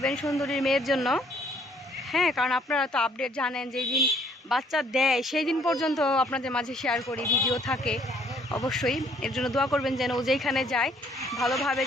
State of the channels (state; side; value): normal; both; correlation 0.63